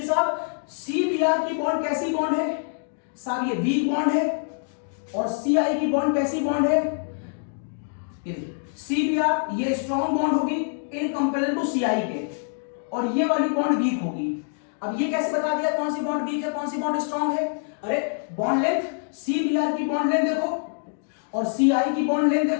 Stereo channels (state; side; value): silent; right; digital silence